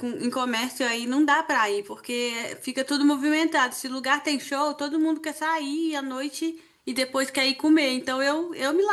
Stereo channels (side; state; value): both; identical; correlation 1.00